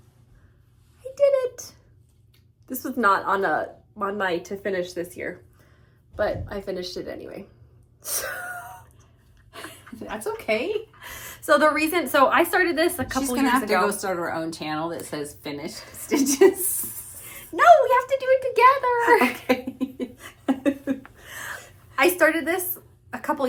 I did it. This was not on my to finish this year, but I finished it anyway. That's okay. So I started this a couple years ago. She's gonna have to go start her own channel that says finished stitches. No, we have to do it together. Okay. I started this a couple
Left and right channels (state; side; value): identical; both; correlation 1.00